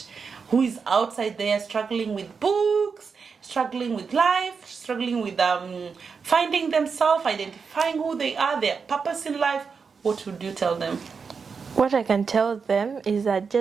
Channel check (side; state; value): left; quieter; 5.5 dB